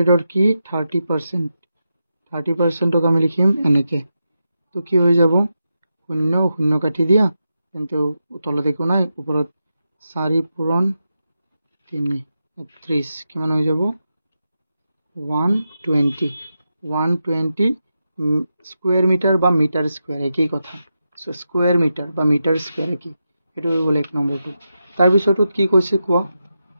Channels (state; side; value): inverted; both; correlation -0.88